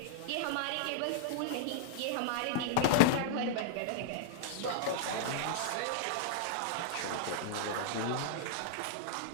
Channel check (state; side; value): different; both; correlation -0.01